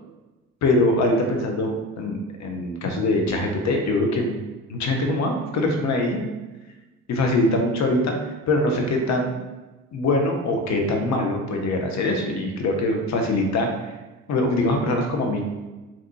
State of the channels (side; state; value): both; normal; correlation 0.29